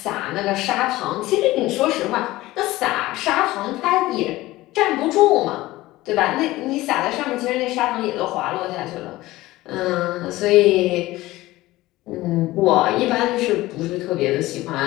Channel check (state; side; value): quieter; right; 18.0 dB